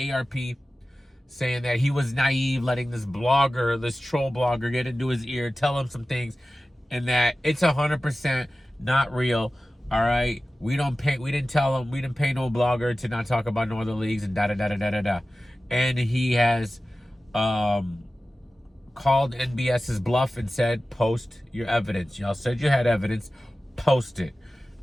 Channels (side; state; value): both; normal; correlation 0.95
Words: saying that he was naive, letting this troll blogger get into his ear, tell him some things, and that it's 100% not real. All right, we didn't pay no blogger to not talk about no other leagues and da da da da da da da. And he has called called NBS's bluff and said, post your evidence. Y'all said you had evidence, post it.